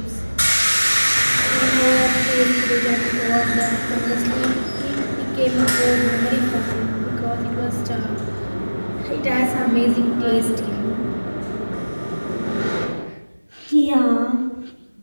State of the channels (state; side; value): inverted; both; correlation -1.00